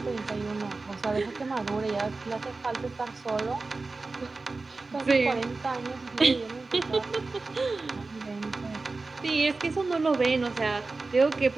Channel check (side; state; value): left; quieter; 3.7 dB